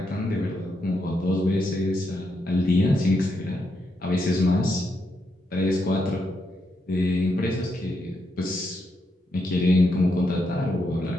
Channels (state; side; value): normal; both; correlation 0.81